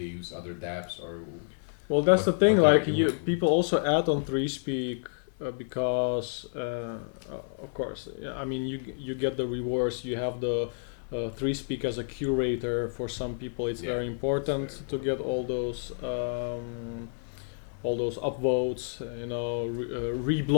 use other dApps or? Well, that's the thing. Like people also add on 3Speak because, of course, I mean you get the rewards. You have the 3Speak as a curator. For some people, it's very important to get all those upvotes,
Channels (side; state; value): right; silent; 58 dB below the other